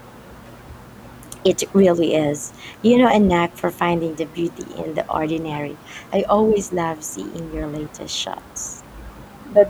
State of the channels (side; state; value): both; identical; correlation 1.00